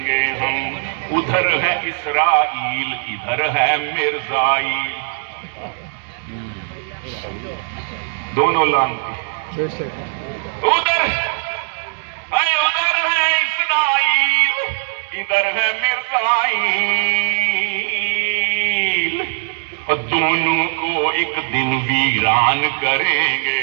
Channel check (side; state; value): left; silent; 57 dB below the other